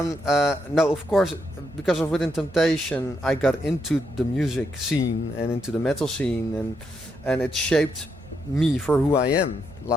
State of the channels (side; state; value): both; normal; correlation 0.79